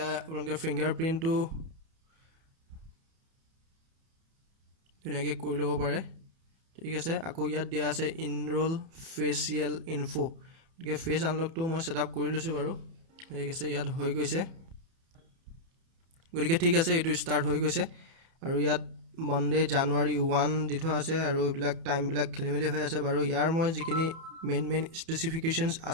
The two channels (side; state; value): left; late; 30 ms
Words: আপোনালোকে ফিংগাৰ প্ৰিণ্টটো ধুনীয়াকৈ কৰি ল'ব পাৰে ঠিক আছে আকৌ ইয়াত দিয়া আছে ইনৰোল ফেচিয়েল ইনফো গতিকে ফেচ আনলকটো মই ছেটআপ কৰি লৈছোঁ বাৰু ঠিক আছে ইয়াত হৈ গৈছে গতিকে ঠিক আছে এইটো ষ্টাৰ্ট হৈ গৈছে আৰু ইয়াত মনডে জানুৱাৰী 1 দি থোৱা আছে আৰু এইবিলাক টাইমবিলাক খেলি মেলি হৈ আছে বাৰু ইয়াৰ মই যিখিনি মেইন স্পেচিফিকেশ্যনছ